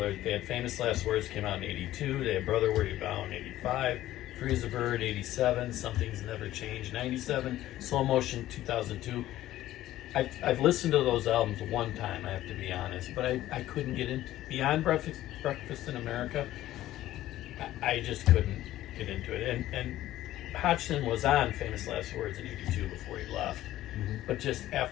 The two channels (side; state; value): right; quieter; 14.4 dB